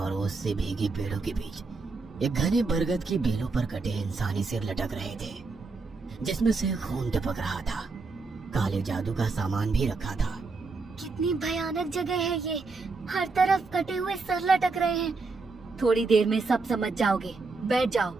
ओस से भीगी पेड़ों के बीच एक घने बरगद की बेलों पर कटे इंसानी सिर लटक रहे थे, जिसमें से खून टपक रहा था। काले जादू का सामान भी रखा था। कितनी भयानक जगह है ये, हर तरफ कटे हुए सर लटक रहे हैं। थोड़ी देर में सब समझ जाओगे, बैठ जाओ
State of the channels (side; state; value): left; quieter; 4.0 dB